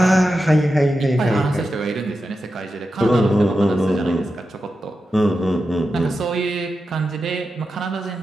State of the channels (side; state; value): both; normal; correlation 0.90